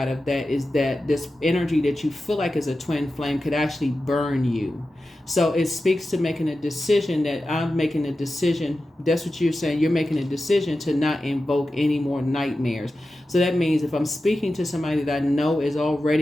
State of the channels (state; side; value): normal; both; correlation 0.93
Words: of that is that this energy that you feel like is a twin flame could actually burn you. So it speaks to making a decision that I'm making a decision. That's what you're saying. You're making a decision to not invoke any more nightmares. So that means if I'm speaking to somebody that I know is